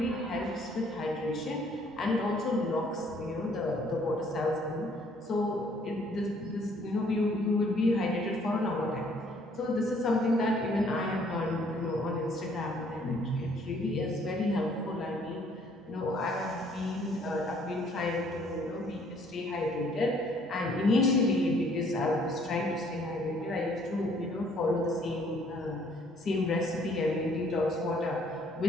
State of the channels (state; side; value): normal; both; correlation 0.62